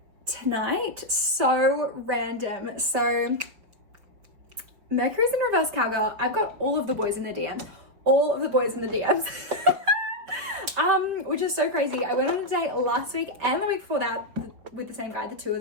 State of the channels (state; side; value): late; left; 5.4 ms